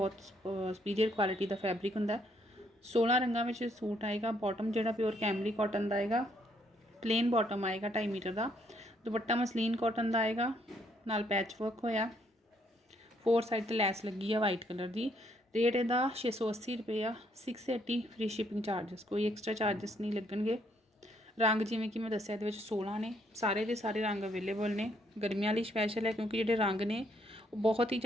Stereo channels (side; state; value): both; normal; correlation 0.70